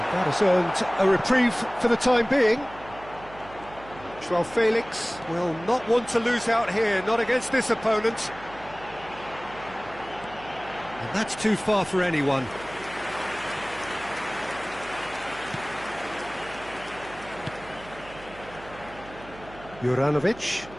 that has earned a reprieve for the time being. João Felix will not want to lose out here, not against this opponent. And that's too far for anyone. Juranovic,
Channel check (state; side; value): noise; right; hum, 18 dB below the sound